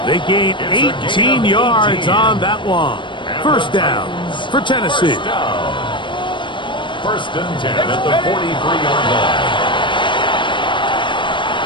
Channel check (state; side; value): late; right; 0.23 ms